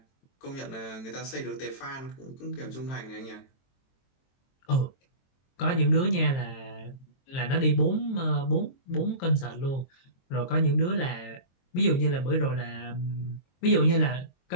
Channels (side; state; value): right; late; 23 ms